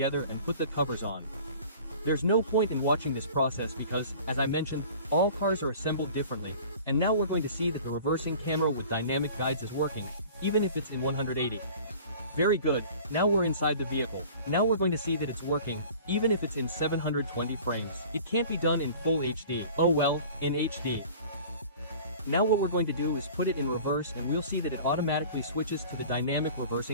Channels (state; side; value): inverted; both; correlation -0.44